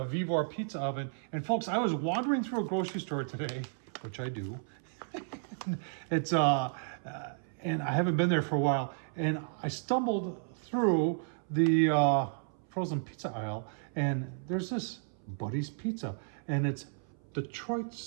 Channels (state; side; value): silent; left; 56 dB below the other